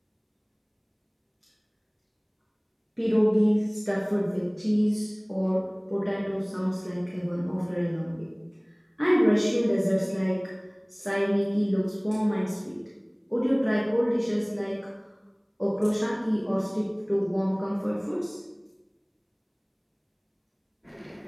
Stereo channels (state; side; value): identical; both; correlation 1.00